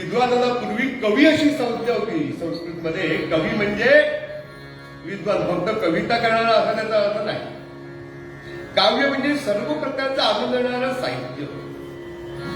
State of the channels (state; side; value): identical; both; correlation 1.00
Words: पूर्वी कवी अशी संज्ञा होती संस्कृतमध्ये. कवी म्हणजे विद्वान, फक्त कविता करणारा असा त्याचा अर्थ नाही. काव्य म्हणजे सर्व प्रकारचं आनंद देणारं साहित्य,